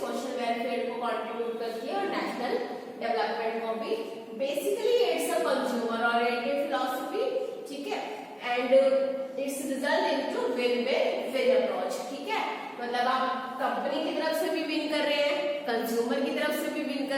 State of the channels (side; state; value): both; identical; correlation 1.00